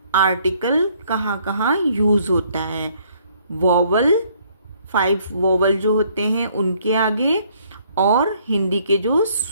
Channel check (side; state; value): both; inverted; correlation -0.65